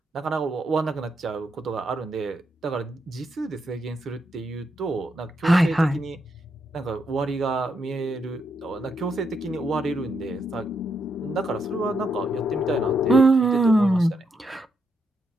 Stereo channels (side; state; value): both; normal; correlation 0.80